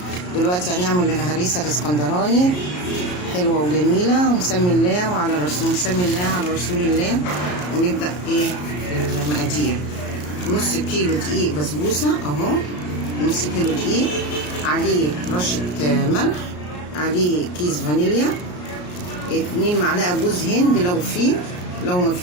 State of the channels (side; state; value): right; late; 33 ms